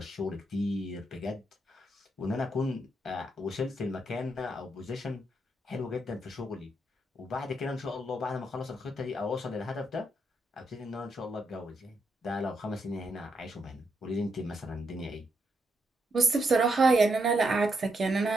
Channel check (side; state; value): both; normal; correlation 0.80